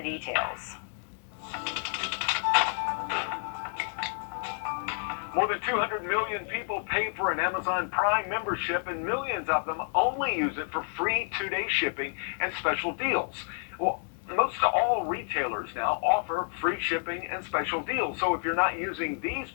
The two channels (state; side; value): silent; right; 58 dB below the other